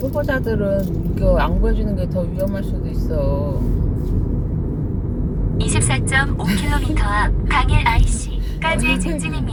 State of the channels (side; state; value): both; identical; correlation 1.00